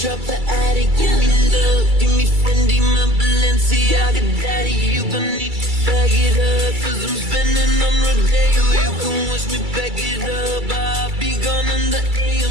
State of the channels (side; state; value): left; late; 2.3 ms